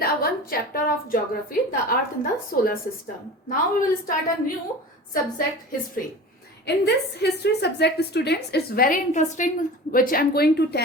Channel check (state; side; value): normal; both; correlation 0.36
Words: one chapter of geography, the earth in the solar system. Now we will start a new subject, history. In this history subject, students, it's very interesting, which I'm going to